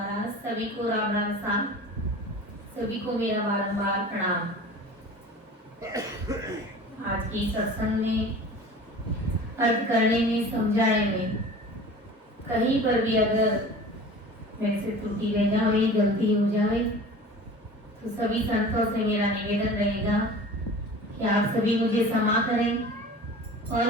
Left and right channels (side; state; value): both; normal; correlation 0.40